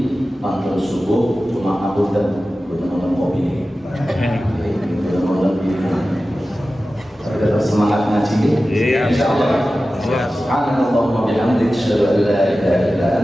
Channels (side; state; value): both; normal; correlation 0.95